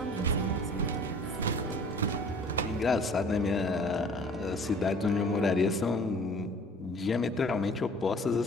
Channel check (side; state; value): both; normal; correlation 0.49